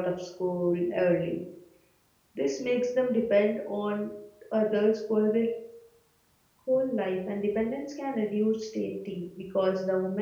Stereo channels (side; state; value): both; identical; correlation 1.00